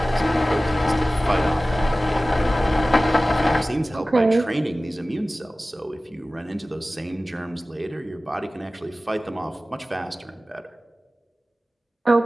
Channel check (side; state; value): both; normal; correlation 0.97